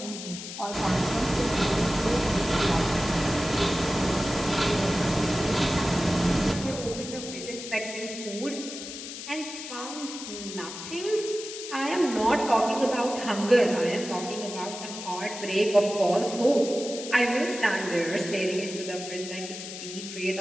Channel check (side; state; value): left; noise; hiss, 9 dB below the sound